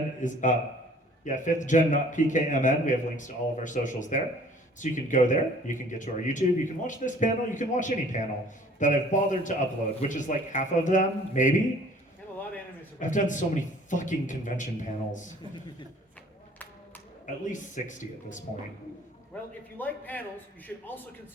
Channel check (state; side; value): normal; both; correlation 0.53